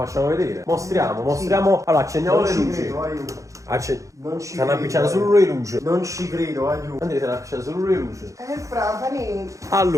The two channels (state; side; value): late; left; 0.15 ms